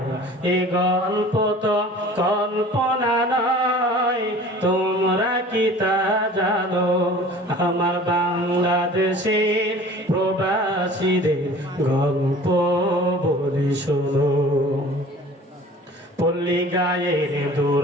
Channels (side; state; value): both; normal; correlation 0.45